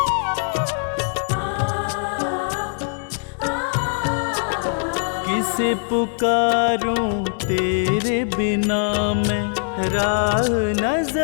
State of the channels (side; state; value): right; silent; digital silence